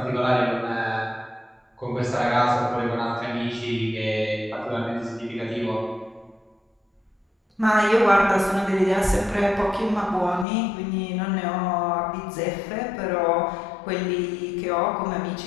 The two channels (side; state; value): right; drops out; at 10.5 s